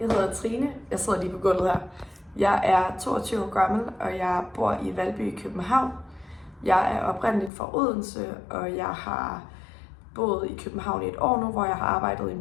hedder Trine. Jeg sidder lige på gulvet her. Jeg er 22 år gammel, og jeg bor i Valby i København. Jeg er oprindeligt fra Odense, og jeg har boet i København i et år nu, hvor jeg har arbejdet i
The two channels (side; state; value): right; drops out; at 7.5 s